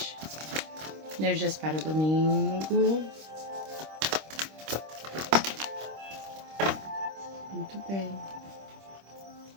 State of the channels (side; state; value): left; late; 26 ms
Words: Energias para domingo. Muito bem.